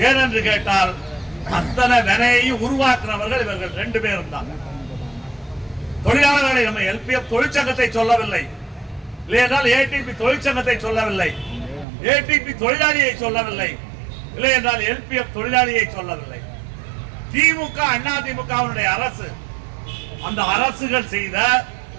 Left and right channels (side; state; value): left; drops out; at 11.9 s